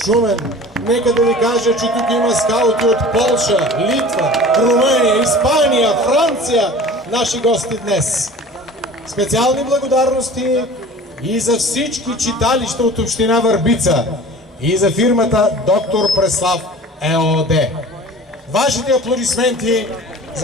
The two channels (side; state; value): both; normal; correlation 0.41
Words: Шумен. Нека да ви кажа, че тук има скаути от Полша, Литва, Румъния, Испания, Франция, наши гости днес. Специални благодарности и за всички читалища от община Върбица и за фирмата Доктор Преслав ЕООД. Вашите аплодисменти